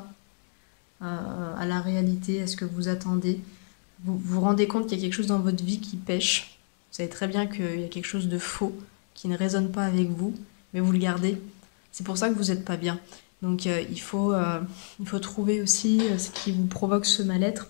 à la réalité, à ce que vous attendez. Vous vous rendez compte qu'il y a quelque chose dans votre vie qui pêche. Vous savez très bien qu'il y a quelque chose de faux qui ne résonne pas avec vous, mais vous le gardez. C'est pour ça que vous n'êtes pas bien. Donc il faut trouver aussi ce qui vous provoque ce mal-être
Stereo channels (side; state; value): right; silent; 59 dB below the other